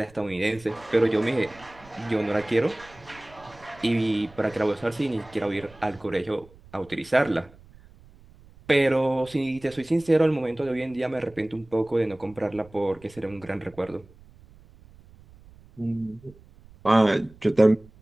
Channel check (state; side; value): noise; right; rumble, 24 dB below the sound